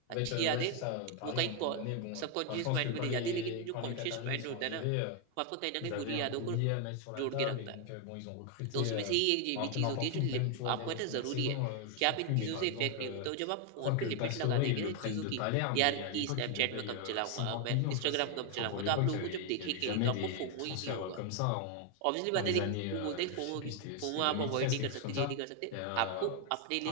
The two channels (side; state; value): both; different; correlation 0.00